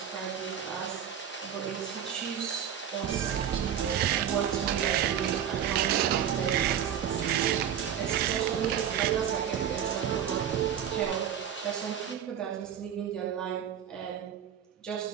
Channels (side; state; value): left; quieter; 9.1 dB